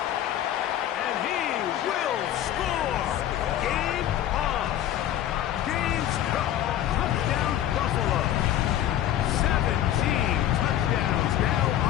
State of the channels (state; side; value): quieter; right; 11.9 dB